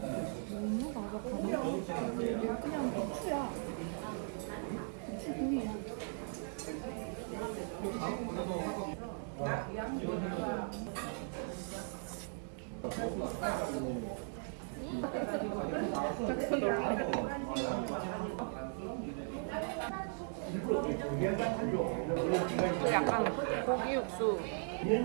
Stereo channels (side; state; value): left; silent; 52 dB below the other